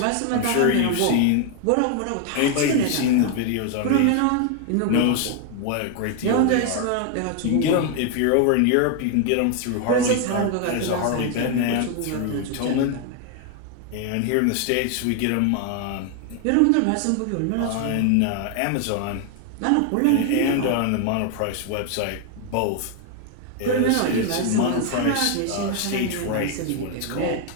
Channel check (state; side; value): different; both; correlation 0.00